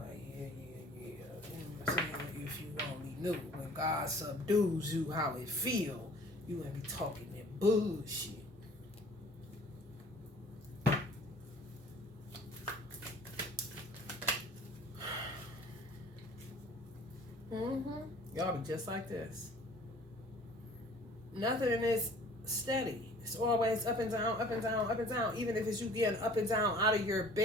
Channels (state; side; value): normal; both; correlation 0.50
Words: yeah. You know what I'm saying? If you only knew. When God subdues you how it feel, you wouldn't be talking that bullshit. Y'all be just like this. Nothing is steady. It's always up and down, up and down, up and down. Even if it's you getting up and down out of your